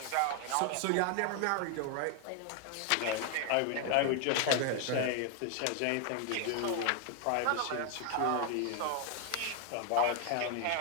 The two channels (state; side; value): different; both; correlation 0.01